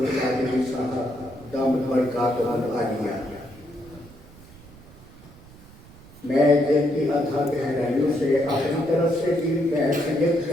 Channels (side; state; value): right; noise; rumble, 21 dB below the sound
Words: صاحب دامت برکاتہ العالیہ. میں دل کی ادھا گہرائیوں سے اپنی طرف سے بھی بحیثیت